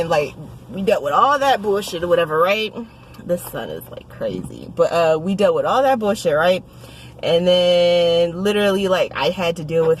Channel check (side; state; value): both; identical; correlation 1.00